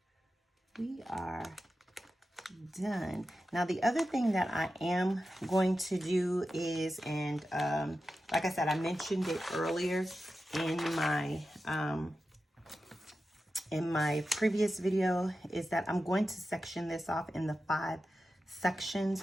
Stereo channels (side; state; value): both; normal; correlation 0.92